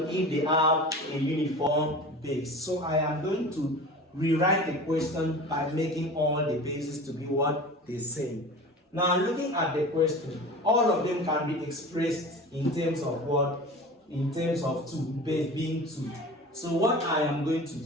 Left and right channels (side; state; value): both; normal; correlation 0.36